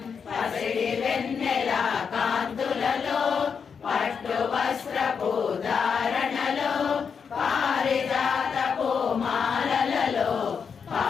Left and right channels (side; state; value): right; quieter; 6.3 dB